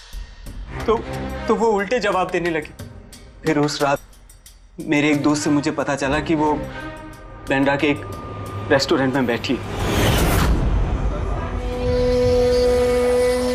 वो उल्टे जवाब देने लगी। फिर उस रात मेरे एक दोस्त से मुझे पता चला कि वो बांद्रा के एक रेस्टोरेंट में बैठी है।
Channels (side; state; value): both; identical; correlation 1.00